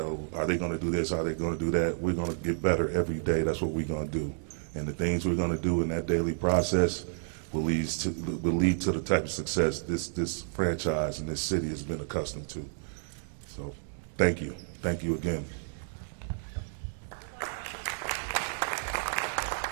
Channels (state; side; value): silent; left; digital silence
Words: are they going to do this? Are they going to do that? We're going to get better every day. That's what we're going to do. And the things we're going to do in that daily process will lead to the type of success this franchise and this city has been accustomed to. So thank you. Thank you again.